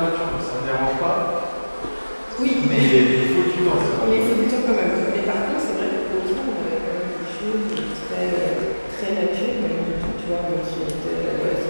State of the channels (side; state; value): both; inverted; correlation -1.00